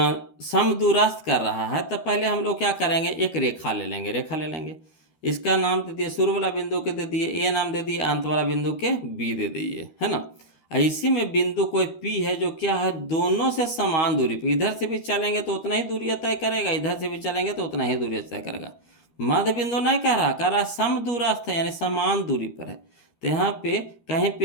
समदूरस्थ कर रहा है तो पहले हम लोग क्या करेंगे, एक रेखा ले लेंगे, इसका नाम दे दिए, शुरू वाला बिंदु के दे दिए ए नाम दे दिए, अंत वाला बिंदु के बी दे दिए, है ना। इसी में बिंदु कोई पी है जो क्या है, दोनों से समान दूरी पे, इधर से भी चलेंगे तो उतना ही दूरी तय करेगा, इधर से भी चलेंगे तो उतना ही दूरी तय करेगा। मध्य बिंदु नहीं कह रहा समदूरस्थ है, यानी समान दूरी पर है। तो यहाँ पे कहीं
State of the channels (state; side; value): late; right; 13 ms